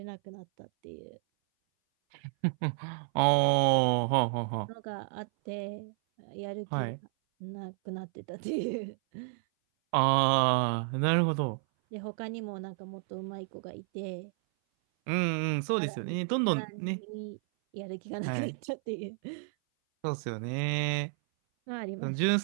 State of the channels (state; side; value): silent; left; 57 dB below the other